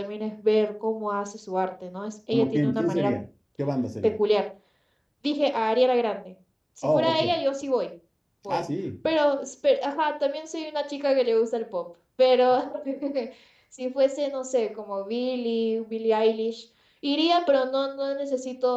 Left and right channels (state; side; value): identical; both; correlation 1.00